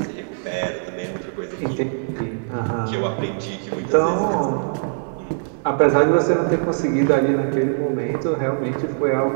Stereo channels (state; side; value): silent; left; digital silence